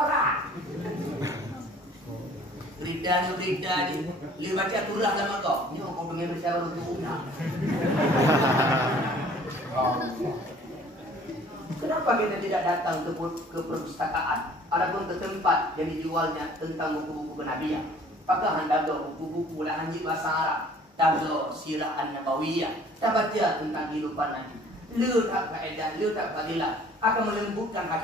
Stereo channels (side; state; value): both; normal; correlation 0.53